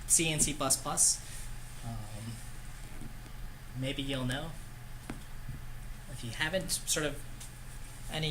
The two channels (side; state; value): both; identical; correlation 1.00